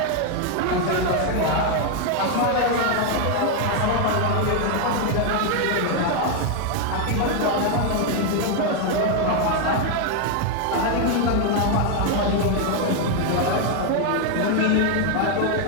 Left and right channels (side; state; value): both; different; correlation 0.01